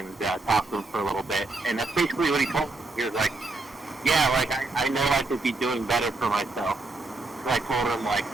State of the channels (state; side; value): quieter; left; 3.2 dB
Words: talked to him for a little bit, and that's basically what he told me. He was like, yeah, like I know I could be doing better for myself. So I told him like,